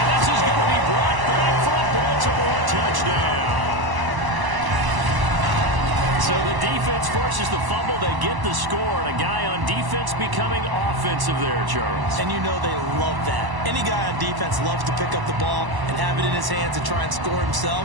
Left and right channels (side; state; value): left; late; 1.0 ms